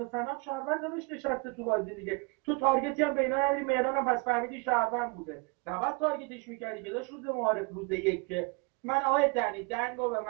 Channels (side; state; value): left; quieter; 30.3 dB